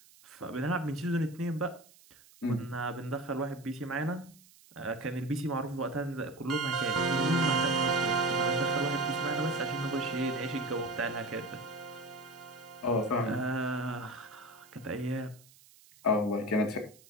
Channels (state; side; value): noise; right; hiss, 25 dB below the sound